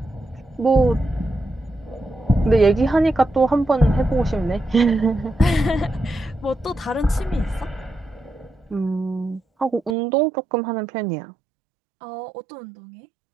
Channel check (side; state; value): left; drops out; at 10.0 s